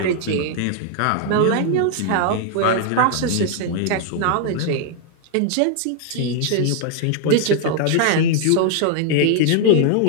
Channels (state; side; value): different; both; correlation 0.00